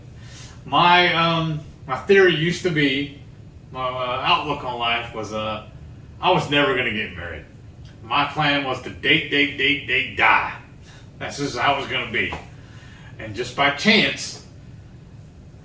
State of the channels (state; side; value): identical; both; correlation 1.00